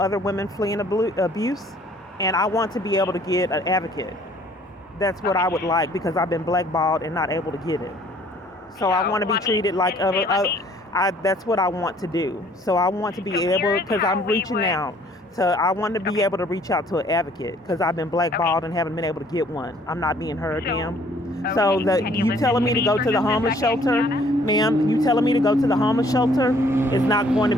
women fleeing abuse, and I want to be able to get an advocate. That's what I would like, because I've been blackballed and not able to get it. So I want to be treated like other. That's what I want to do. So I want to be able, because I'm reaching out. So I want to be able to reach out to an advocate, because I've been blackballed and haven't been able to get one. I'm not being heard, ma'am. So you telling me to go to the homeless shelter, ma'am? You telling me to go to the homeless shelter is not going to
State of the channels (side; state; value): both; normal; correlation 0.59